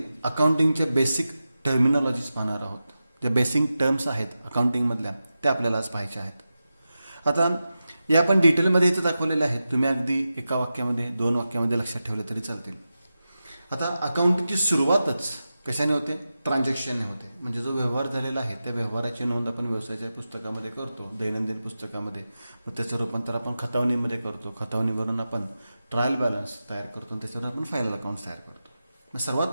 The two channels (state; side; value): inverted; both; correlation -0.92